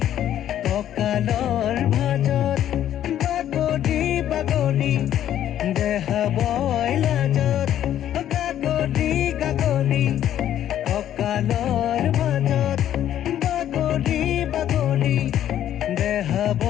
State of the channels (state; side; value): quieter; right; 11.2 dB